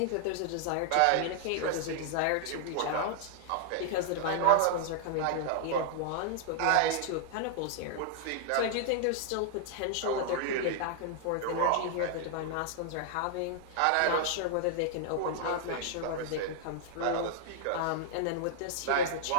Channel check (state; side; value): different; both; correlation 0.00